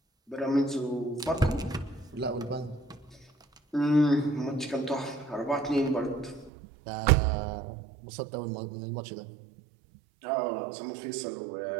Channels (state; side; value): drops out; left; at 6.5 s